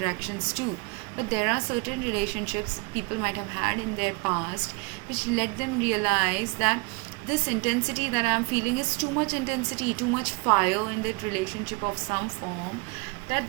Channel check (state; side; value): quieter; left; 29.9 dB